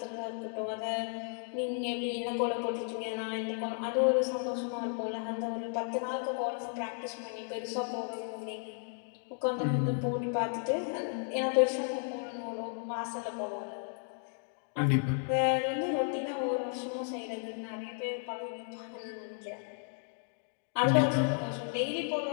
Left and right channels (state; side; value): silent; right; 55 dB below the other